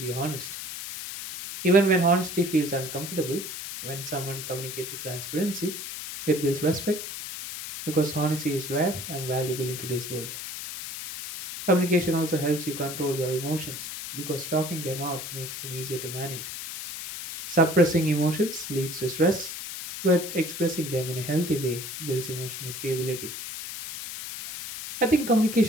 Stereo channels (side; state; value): left; noise; hiss, 8 dB below the sound